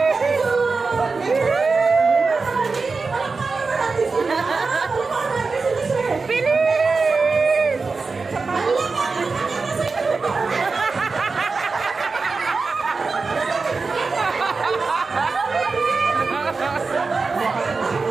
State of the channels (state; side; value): quieter; left; 4.3 dB